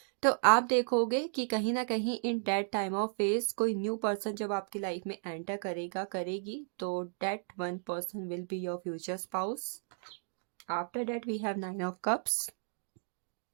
तो आप देखोगे कि कहीं ना कहीं in that time of phase कोई न्यू पर्सन जब आपकी लाइफ में एंटर करेगा करेगी, तो that one person will be your future spouse. After that we have nine of cups.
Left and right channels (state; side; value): silent; left; digital silence